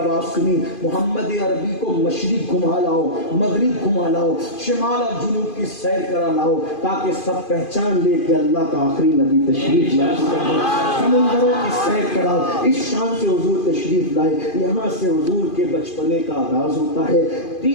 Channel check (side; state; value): right; late; 2.5 ms